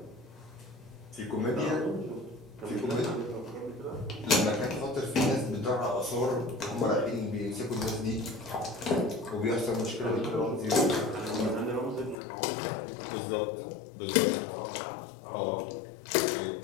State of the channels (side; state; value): right; drops out; at 12.2 s